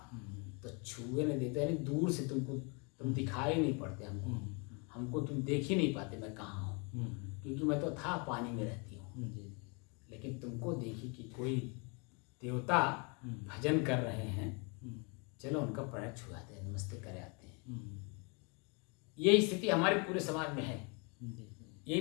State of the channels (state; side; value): quieter; right; 33.3 dB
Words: तो छुए नहीं देते, यानी दूर से तुम दिखाई नहीं पड़ते हमको तुम देख ही नहीं पाते मैं कहाँ हूँ, क्योंकि मैं तो था पानी में रहती हूँ। लेकिन तुमको देखी कि कोई देवता भजन कर रहे हैं, चलो उनका पैर छुआते हैं, नमस्ते करे आते हैं। ये स्थिति हमारे पूरे समाज में है। यही